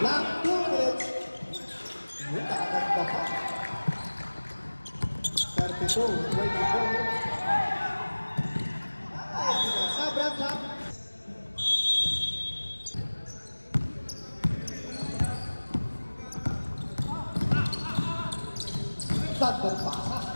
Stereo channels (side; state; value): both; inverted; correlation -1.00